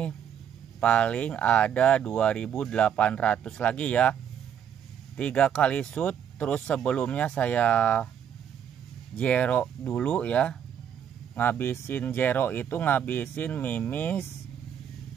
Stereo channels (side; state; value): left; quieter; 8.8 dB